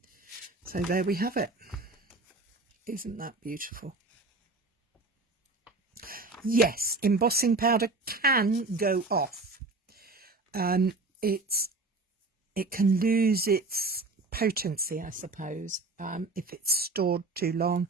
So there we have it. Isn't that beautiful? Yes, embossing powder can go off. It can lose its potency, I suppose, if it's stored too long,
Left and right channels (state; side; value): quieter; left; 3.4 dB